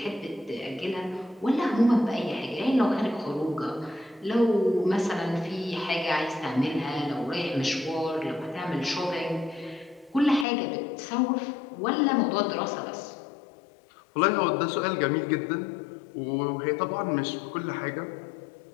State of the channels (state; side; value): drops out; right; at 10.5 s